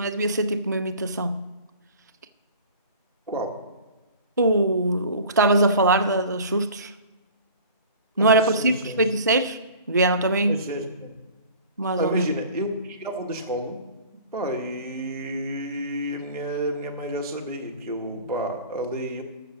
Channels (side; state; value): both; inverted; correlation -0.44